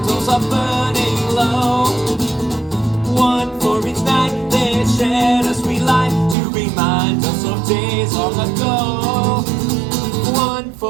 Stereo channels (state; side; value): drops out; left; at 6.4 s